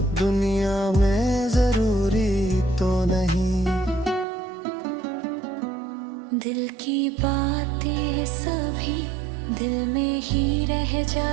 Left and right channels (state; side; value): drops out; left; at 4.2 s